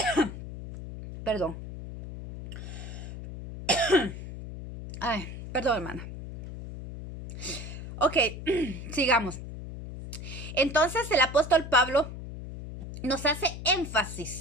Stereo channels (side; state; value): left; noise; hum, 10 dB below the sound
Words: perdón, ay, perdón hermana. Ok, sigamos. Entonces el apóstol Pablo nos hace